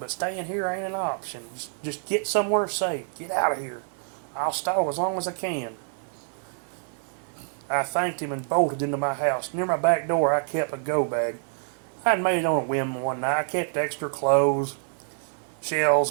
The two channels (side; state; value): left; silent; digital silence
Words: staying here ain't an option. Just get somewhere safe. Get out of here. I'll stall as long as I can. I thanked him and bolted into my house. Near my back door, I kept a go bag. I'd made it on a whim one night. I kept extra clothes,